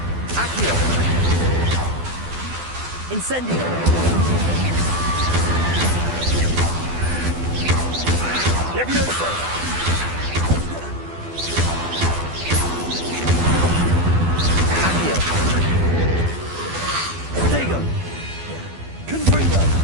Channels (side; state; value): left; late; 12 ms